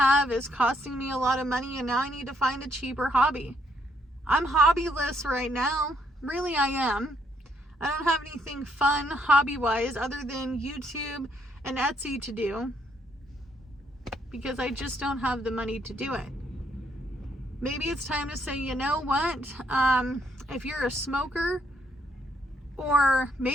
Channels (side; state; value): both; normal; correlation 0.72